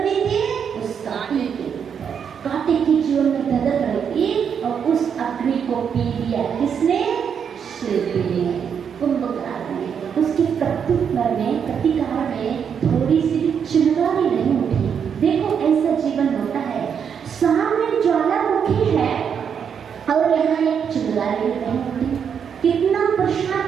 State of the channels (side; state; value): left; quieter; 7.4 dB